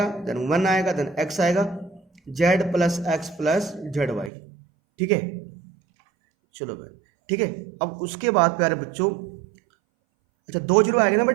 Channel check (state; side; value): drops out; left; at 4.3 s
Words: देन 1 आएगा, देन x आएगा, z plus X plus Z Y. ठीक है, चलो भाई, ठीक है। अब उसके बाद प्यारे बच्चों, अच्छा 2 जीरो आ गए ना